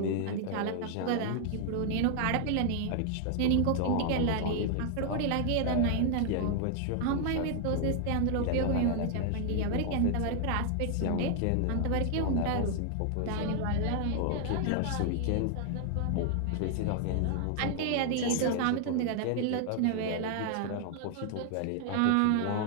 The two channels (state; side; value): different; both; correlation 0.00